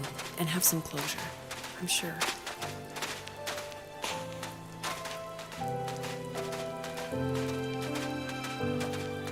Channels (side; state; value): both; identical; correlation 1.00